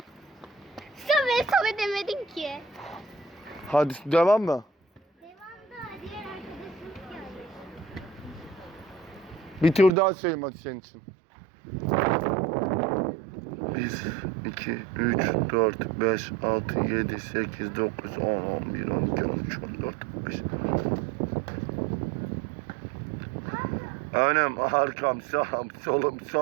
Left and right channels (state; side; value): drops out; left; at 9.9 s